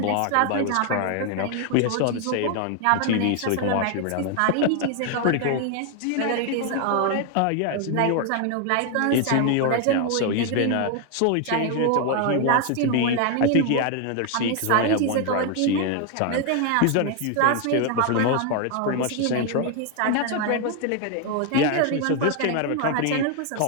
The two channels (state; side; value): different; both; correlation 0.01